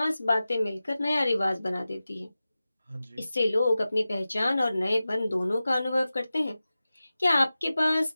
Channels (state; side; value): inverted; both; correlation -0.95